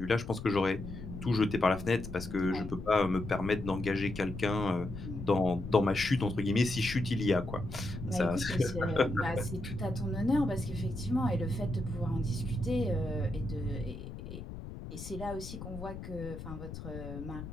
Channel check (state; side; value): noise; left; rumble, 10 dB below the sound